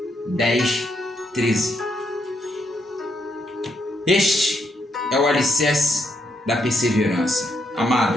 10, 13. Este é o alicerce da perseverança.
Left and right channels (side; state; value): both; normal; correlation 0.77